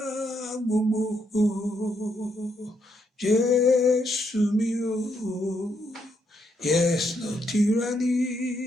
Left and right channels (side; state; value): both; normal; correlation 0.77